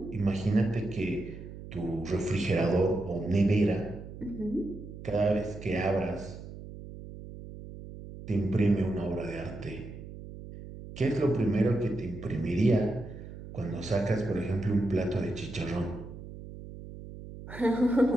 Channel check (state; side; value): noise; right; hum, 13 dB below the sound